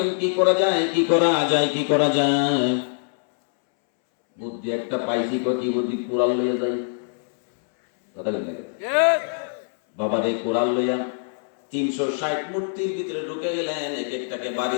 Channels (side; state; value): right; silent; 63 dB below the other